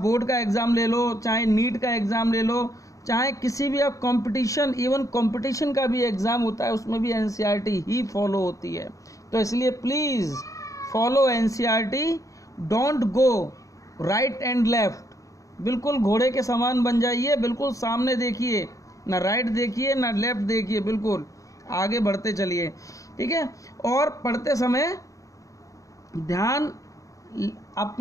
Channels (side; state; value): right; late; 0.16 ms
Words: बोर्ड का एग्ज़ाम ले लो, चाहे नीट का एग्ज़ाम ले लो, चाहे किसी भी आप कंपटीशन, इवन कंपटीशन का भी एग्ज़ाम होता है उसमें भी एनसीईआरटी ही फॉलो होती है। तो इसलिए please follow NCERT, don't go right and left. बिल्कुल घोड़े के समान बन जाइए, बिल्कुल सामने देखिए, ना राइट देखिए ना लेफ्ट देखिए, बिल्कुल आगे बढ़ते चलिए, ठीक है। और पढ़ते समय ध्यान